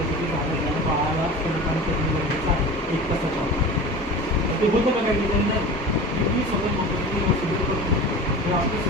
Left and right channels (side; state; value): both; normal; correlation 0.34